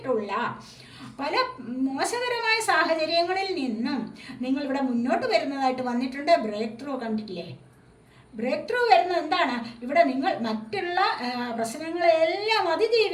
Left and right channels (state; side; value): identical; both; correlation 1.00